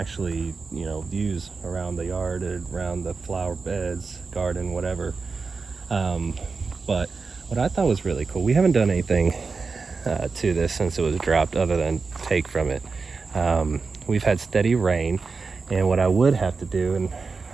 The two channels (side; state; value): left; quieter; 4.5 dB